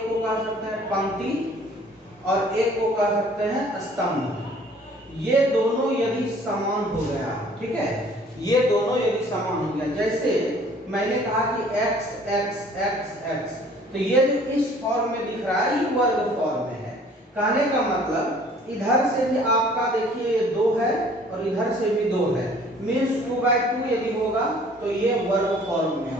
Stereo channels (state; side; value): normal; both; correlation 0.54